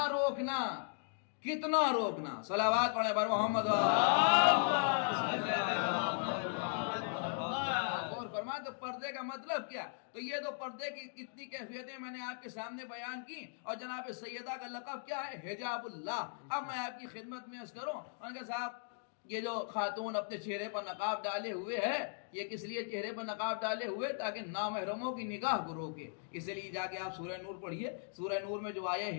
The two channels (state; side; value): silent; right; digital silence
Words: روکنا کتنا روکنا. صلوات پڑھیں پر محمد اور فرمائیں تو پردے کا مطلب کیا. تو یہ تو پردے کی کتنی کیفیتیں میں نے آپ کے سامنے بیان کی. اور جناب سیدہ کا لقب کیا ہے؟ حجاب اللہ. اب میں آپ کی خدمت میں عرض کروں ان کا صاحب یہ جو خاتون اپنے چہرے پر نقاب ڈالے ہوئے ہے یہ کس لیے چہرے پر نقاب ڈالے ہوئے؟ تاکہ نامحرموں کی نگاہ کو روکے. اس لیے جا کے آپ سورہ نور پڑھیے. سورہ نور میں جو